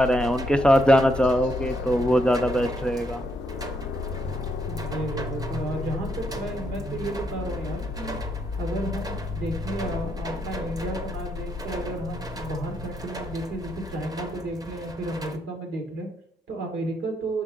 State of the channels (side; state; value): both; normal; correlation 0.76